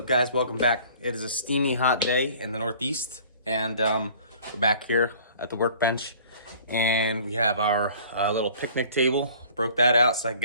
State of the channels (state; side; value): inverted; both; correlation -0.51